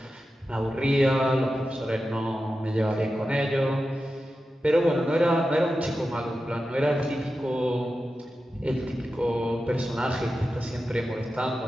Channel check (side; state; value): both; normal; correlation 0.92